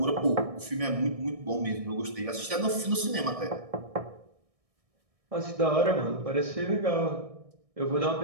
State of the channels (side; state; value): left; late; 1.6 ms